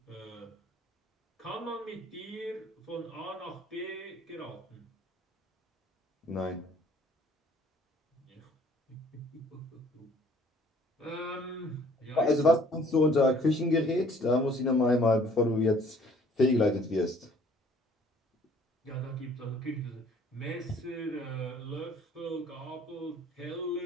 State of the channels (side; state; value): both; normal; correlation 0.57